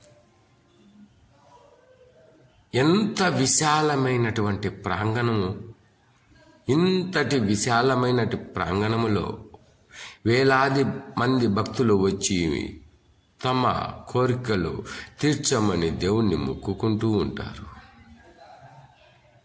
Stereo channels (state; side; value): identical; both; correlation 1.00